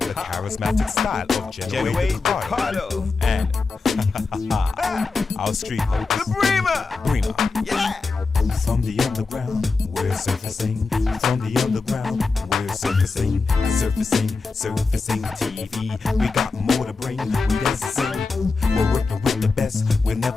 charismatic style of Genoa Ricardo. And our street host, The Bremer. Yeah. From the underground, we're surfacing. From the underground, we're surfacing. Surfacing TV. We got more to bring. We dance and sing. We're working with the best. We'll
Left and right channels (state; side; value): quieter; right; 4.2 dB